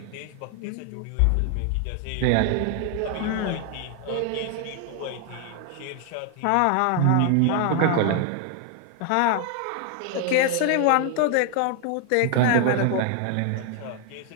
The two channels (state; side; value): different; both; correlation 0.00